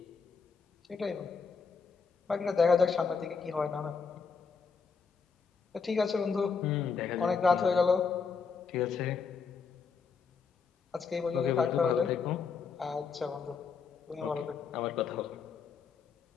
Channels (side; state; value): right; quieter; 5.5 dB